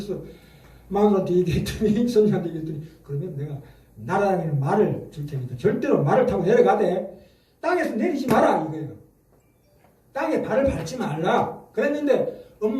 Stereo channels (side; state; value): both; identical; correlation 1.00